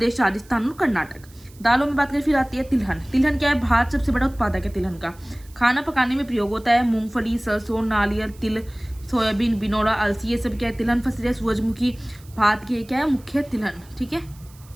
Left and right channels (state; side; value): noise; right; hiss, 26 dB below the sound